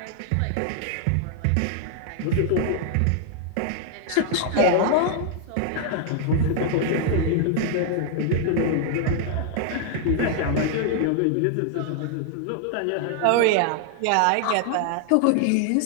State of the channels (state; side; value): different; both; correlation 0.00